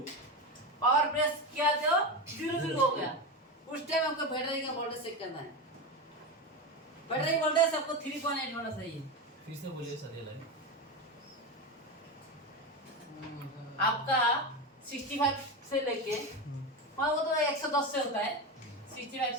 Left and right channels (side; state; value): both; normal; correlation 0.18